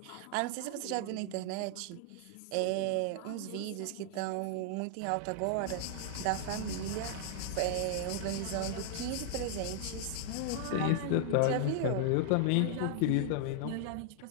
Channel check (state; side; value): different; both; correlation -0.01